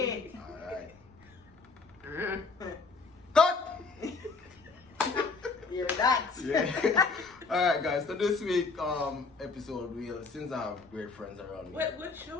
alright. Cut! You're that. Yeah. Alright guys, so this week episode since I have great friends around me. What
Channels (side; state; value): right; quieter; 4.2 dB